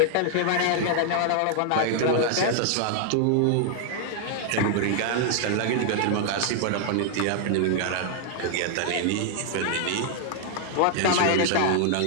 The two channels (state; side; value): different; both; correlation 0.00